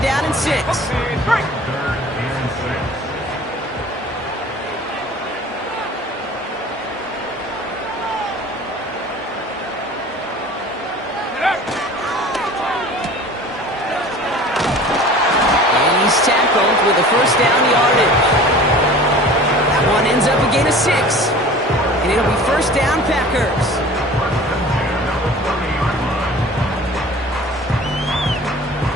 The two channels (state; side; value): normal; both; correlation 0.43